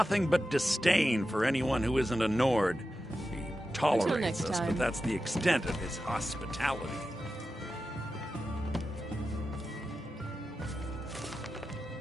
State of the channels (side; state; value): both; normal; correlation 0.91